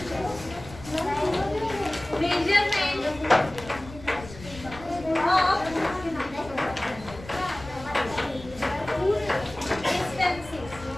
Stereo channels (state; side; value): noise; left; rumble, 16 dB below the sound